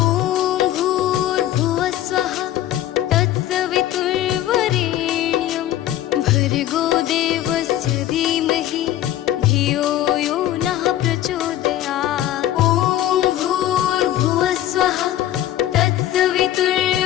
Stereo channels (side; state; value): right; quieter; 13.0 dB